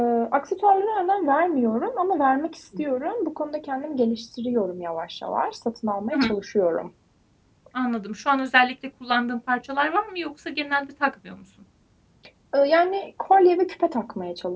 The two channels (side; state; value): both; identical; correlation 1.00